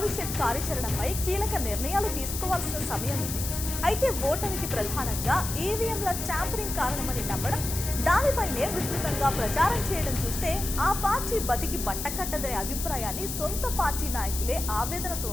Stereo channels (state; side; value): noise; left; hiss, 5 dB below the sound